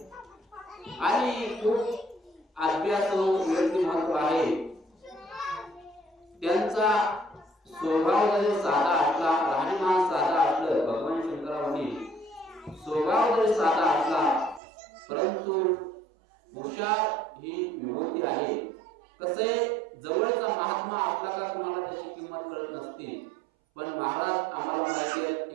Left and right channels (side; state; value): left; drops out; at 14.6 s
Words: आणि खूप अभ्यासू व्यक्तिमत्व आहे. त्यांचा स्वभाव जरी साधा असला, राहणीमान साधा असलं, भगवान शंकरांनी स्वभाव जरी साधा असला परंतु हुशार ही विभूती आहे. कसे जवळचा महात्मा असला का तुम्हाला त्याची किंमत कळत नसते. पण महाराज आम्हाला माहिती आहे,